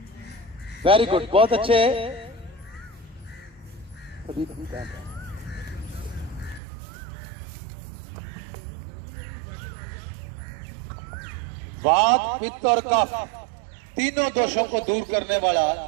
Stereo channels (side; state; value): left; drops out; at 6.6 s